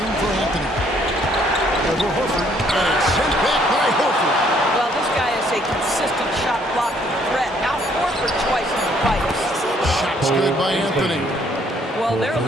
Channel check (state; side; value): normal; both; correlation 0.65